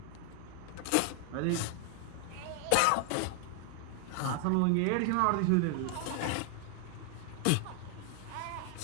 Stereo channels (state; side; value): different; both; correlation 0.00